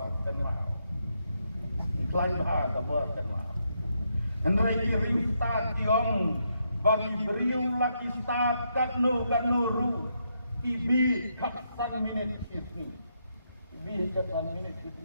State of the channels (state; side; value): inverted; both; correlation -0.79